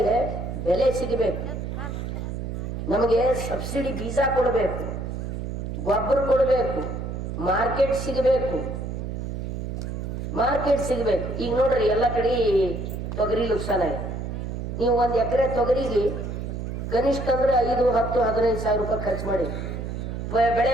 ಬೆಲೆ ಸಿಗಬೇಕು ನಮಗೆ ಸಬ್ಸಿಡಿ ಬೀಜ ಕೊಡಬೇಕು ಗೊಬ್ಬರ ಕೊಡಬೇಕು ಮಾರ್ಕೆಟ್ ಸಿಗಬೇಕು ಈಗ ನೋಡ್ರಿ ಎಲ್ಲ ಕಡೆ ತೊಗರಿ ನುಕ್ಸಾನ ಇದೆ ನೀವು ಒಂದು ಎಕರೆ ತೊಗರಿಗೆ ಕನಿಷ್ಠ ಅಂದ್ರೆ 5, 10, 15 ಸಾವಿರ ರೂಪಾಯಿ ಖರ್ಚು ಮಾಡಿ ಬೆಳೆ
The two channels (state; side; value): noise; right; hum, 5 dB below the sound